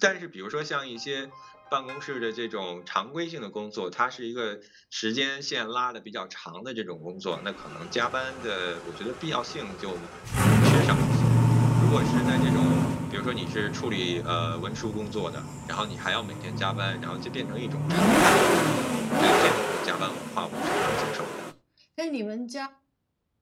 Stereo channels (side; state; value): both; identical; correlation 1.00